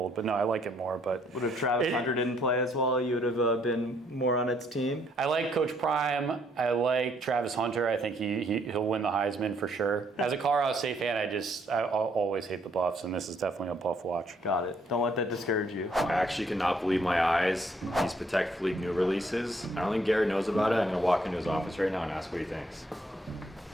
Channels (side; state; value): both; normal; correlation 0.68